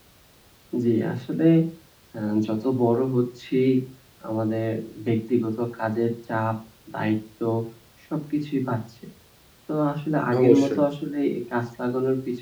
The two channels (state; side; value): identical; both; correlation 1.00